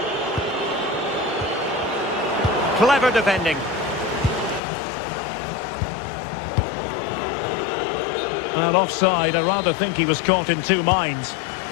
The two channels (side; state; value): right; drops out; at 4.6 s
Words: Clever defending. Well, offside. I rather think he was caught in two minds.